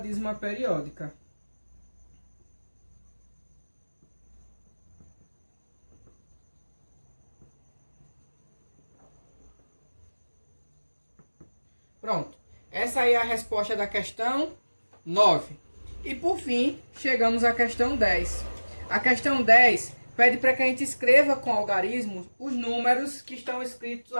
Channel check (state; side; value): inverted; both; correlation -1.00